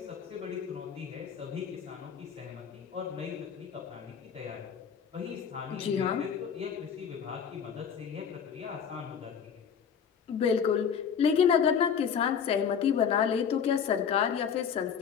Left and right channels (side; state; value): right; quieter; 7.3 dB